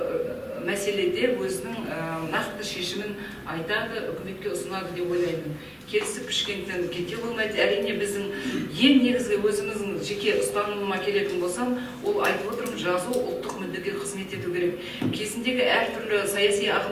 мәселеде өзінің нақты шешімін айтады, үкіметке ұсынады деп ойлаймын. Келісіп пішкенден кете болмайды. Әрине біздің ең негізгі өзіміздің жеке ұстанымыма келетін болсам, ол айтып отырмын, жазу ұлттық мүддеге қызмет ету керек. Кезіндегі әртүрлі саяси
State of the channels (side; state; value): both; identical; correlation 1.00